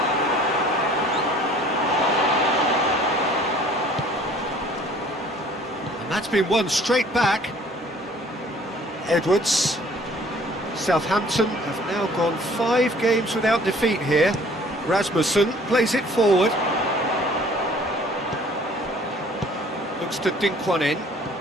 And that's been won straight back. Edwards. Southampton have now gone 5 games without defeat here. Rasmussen plays it forward. Looks to dink one in.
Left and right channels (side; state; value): both; normal; correlation 0.53